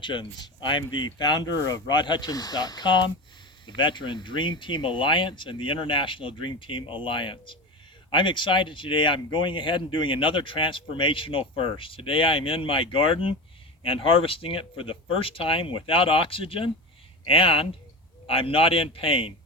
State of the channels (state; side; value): normal; both; correlation 0.25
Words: I'm the founder of rodhutchins.com, the Veteran Dream Team Alliance, and the International Dream Team Alliance. I'm excited today. I'm going ahead and doing another transformational first. Today I'm in my garden and harvesting it for the first time without oxygen, and I'm not in pain.